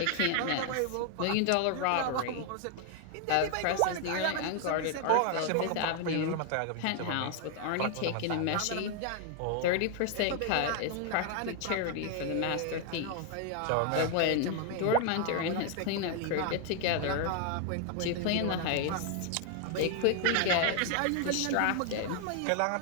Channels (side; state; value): both; different; correlation 0.00